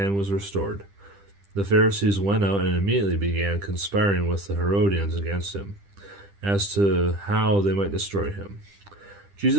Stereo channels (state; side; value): late; left; 10 ms